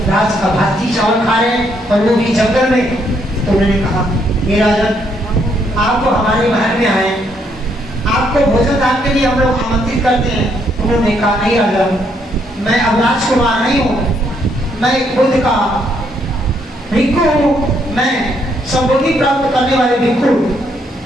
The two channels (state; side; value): normal; both; correlation 0.73